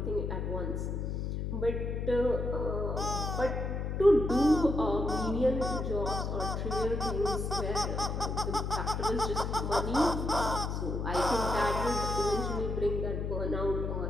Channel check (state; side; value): noise; left; hum, 2 dB below the sound